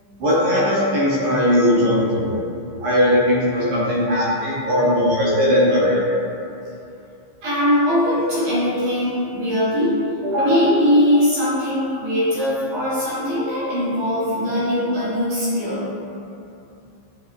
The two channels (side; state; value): left; late; 15 ms